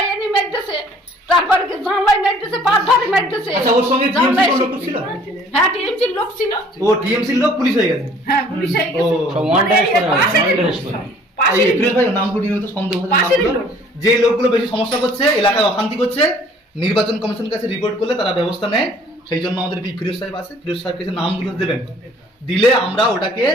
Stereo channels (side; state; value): both; normal; correlation 0.55